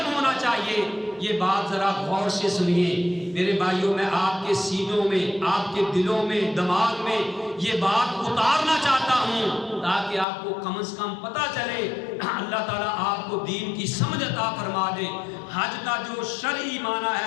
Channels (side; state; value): right; drops out; at 10.2 s